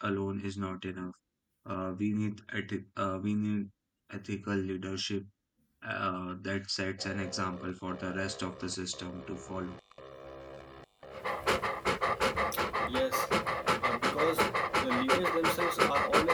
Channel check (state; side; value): identical; both; correlation 1.00